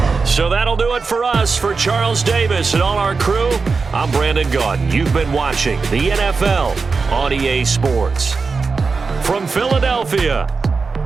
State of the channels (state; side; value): quieter; left; 4.6 dB